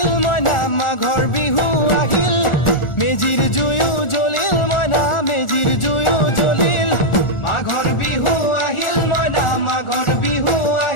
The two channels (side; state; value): right; late; 1.4 ms